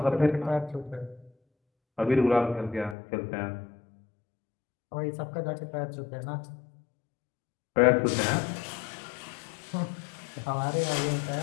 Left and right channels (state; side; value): drops out; right; at 3.0 s